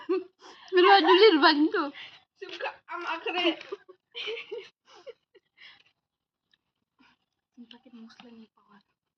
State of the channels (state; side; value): identical; both; correlation 1.00